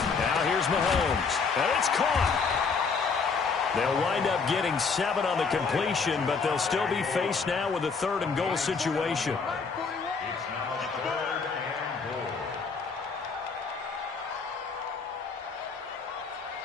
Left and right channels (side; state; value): right; quieter; 5.1 dB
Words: Now here's Mahomes, and it's caught. They'll wind up getting 7 on the completion, but they'll still be faced now with a 3rd and goal situation.